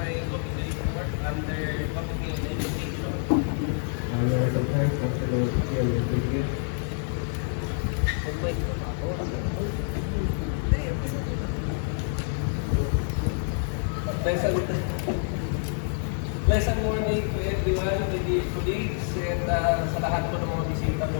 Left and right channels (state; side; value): silent; right; 55 dB below the other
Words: committee report under Committee on Education? You are recognized, Councilor Pierre Rodriguez. Pleasant morning to everyone, to the colleagues, and sa lahat po ng mga bisita